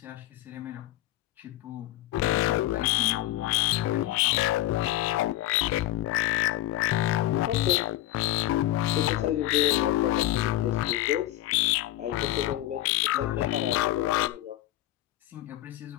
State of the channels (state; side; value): quieter; right; 15.1 dB